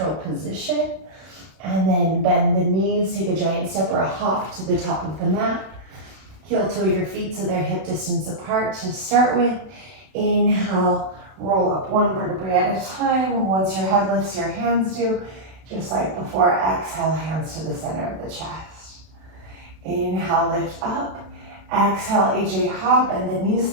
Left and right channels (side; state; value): left; late; 32 ms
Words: position. And then bend the knees. Take a giant step or a hop to the top of the mat. Heel toe your feet so they're hip distance apart to start with. Inhale, roll up one vertebrae at a time. Once your head lifts, your hands do. Just like before, exhale, hands to the center of the chest. Inhale, lift up. Exhale, HA hop, and the knees,